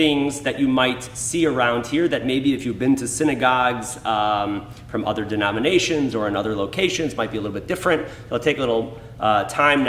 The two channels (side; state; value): both; identical; correlation 1.00